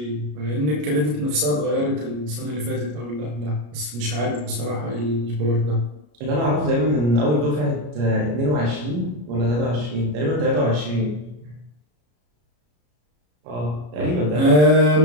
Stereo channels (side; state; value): left; late; 33 ms